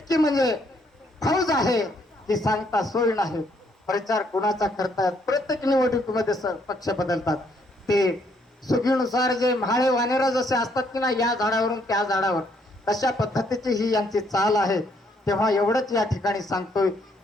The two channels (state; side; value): normal; both; correlation 0.70